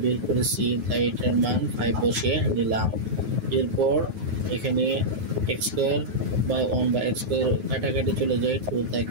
বের করেছি, তাই এটার মান 5 বসে নিলাম। এরপর এখানে x square by 1 by x square কাটাকাটি চলে যায়, 2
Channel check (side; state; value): left; late; 9.5 ms